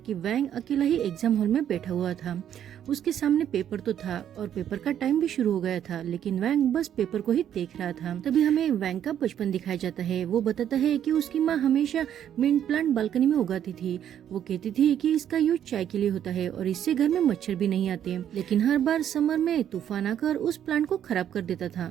वैंग अकेला ही एग्जाम हॉल में बैठा हुआ था। उसके सामने पेपर तो था और पेपर का टाइम भी शुरू हो गया था, लेकिन वैंग बस पेपर को ही देख रहा था। तभी हमें वैंग का बचपन दिखाया जाता है। वो बताता है कि उसकी माँ हमेशा मिंट प्लांट बालकनी में उगाती थी। वो कहती थी कि इसका यूज चाय के लिए होता है और इससे घर में मच्छर भी नहीं आते, लेकिन हर बार समर में तूफान आकर उस प्लांट को खराब कर देता था।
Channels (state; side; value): quieter; left; 10.0 dB